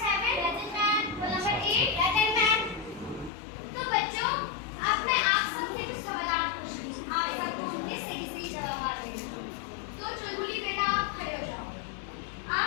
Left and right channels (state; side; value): drops out; right; at 3.3 s